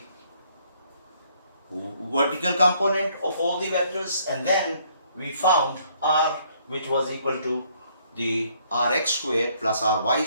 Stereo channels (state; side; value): inverted; both; correlation -0.65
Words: vertical component of all the vectors, and then we found r, which was equal to the rx square plus ry